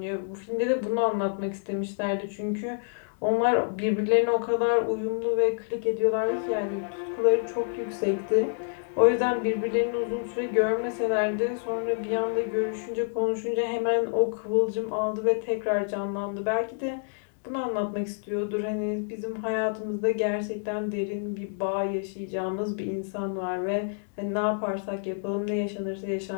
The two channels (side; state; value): right; silent; digital silence